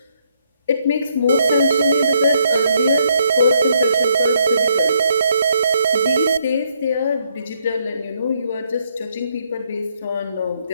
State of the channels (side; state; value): both; inverted; correlation -0.72